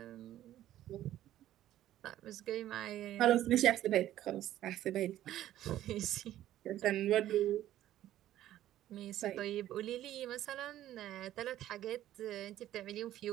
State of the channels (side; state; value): left; quieter; 13.1 dB